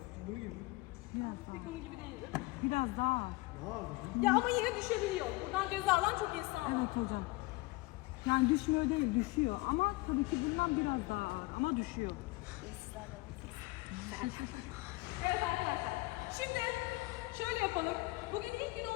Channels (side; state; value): right; quieter; 22.2 dB